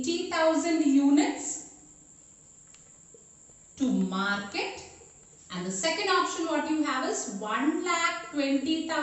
units to market, and the second option what you have is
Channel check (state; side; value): identical; both; correlation 1.00